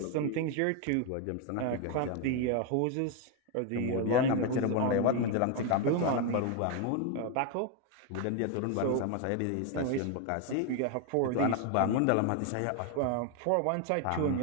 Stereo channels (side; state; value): both; different; correlation 0.01